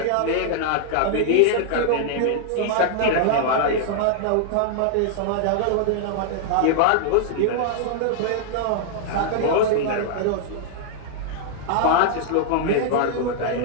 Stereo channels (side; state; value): both; different; correlation -0.01